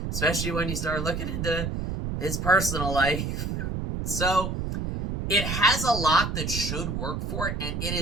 especially when you start looking into his personal life. So, it has a lot that should work for it, and it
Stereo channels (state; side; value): noise; right; rumble, 3 dB below the sound